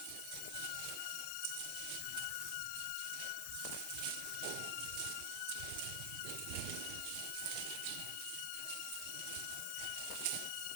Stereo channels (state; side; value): different; both; correlation 0.00